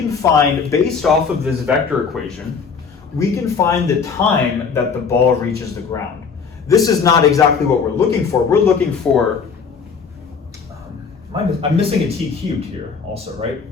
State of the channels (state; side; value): quieter; right; 5.7 dB